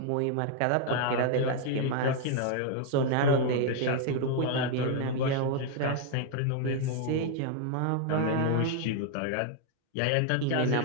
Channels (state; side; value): different; both; correlation 0.00